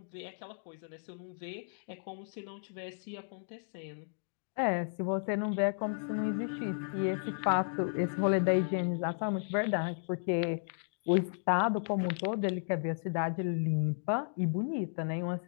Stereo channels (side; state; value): right; silent; digital silence